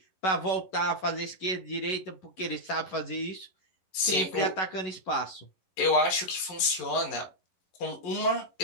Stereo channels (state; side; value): late; right; 11 ms